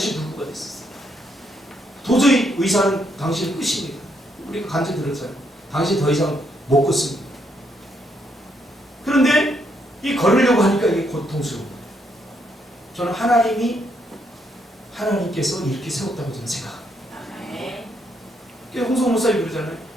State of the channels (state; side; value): normal; both; correlation 0.75